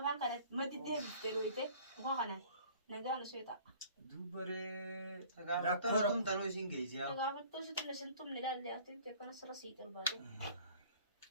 kan kana mati deh pero itu bukan kana. Naga anu sueta. Dubare Rakor tum tanu sing gaisi ya. Naga betul sih tuh sentum nilai dia tu dia kana selesai terbalik.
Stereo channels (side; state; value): both; inverted; correlation -0.51